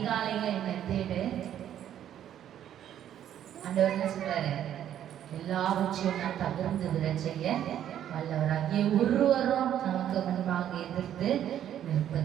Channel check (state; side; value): quieter; left; 10.6 dB